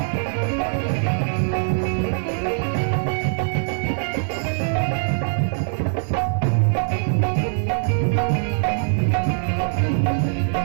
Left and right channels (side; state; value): left; silent; digital silence